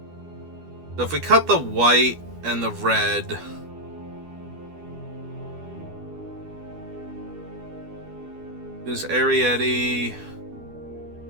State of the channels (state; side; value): late; left; 12 ms